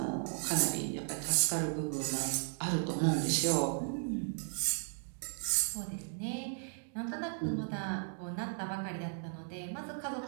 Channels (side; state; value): left; silent; 54 dB below the other